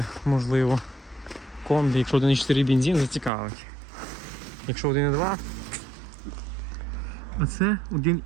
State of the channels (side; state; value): left; drops out; at 3.3 s